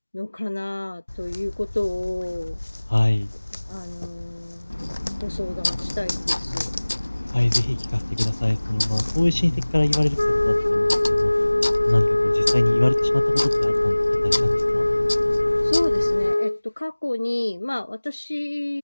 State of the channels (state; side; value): inverted; both; correlation -1.00